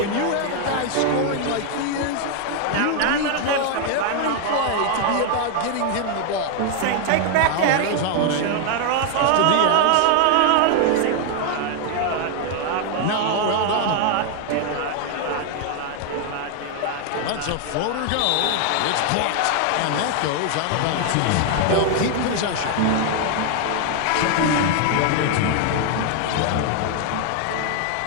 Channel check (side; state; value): both; different; correlation 0.00